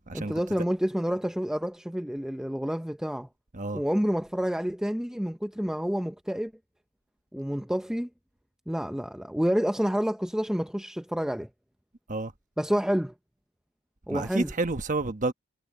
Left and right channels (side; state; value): both; normal; correlation 0.91